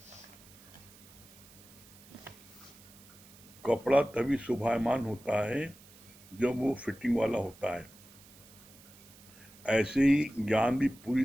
कपड़ा तभी शोभायमान होता है जब वो फिटिंग वाला होता है। ऐसे ही ज्ञान भी पूरी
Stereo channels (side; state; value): right; noise; hiss, 22 dB below the sound